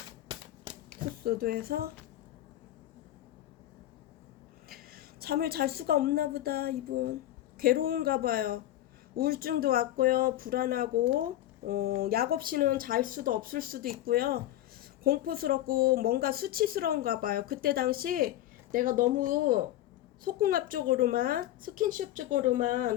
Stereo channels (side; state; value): right; quieter; 13.8 dB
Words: 투소드에서 잠을 잘 수가 없나 보다. 이분 괴로운가 봐요. 우울증도 왔고요. 불안하고 약 없이는 잘 수도 없을 수도 있고요. 공포스럽고 뭔가 수치스러운가 봐요. 그때 당시 내가 너무 속궁합적으로만 스킨십